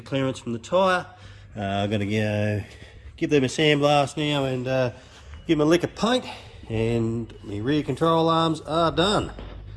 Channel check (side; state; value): both; identical; correlation 1.00